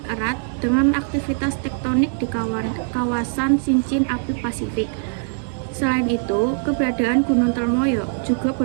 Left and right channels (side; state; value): left; silent; 62 dB below the other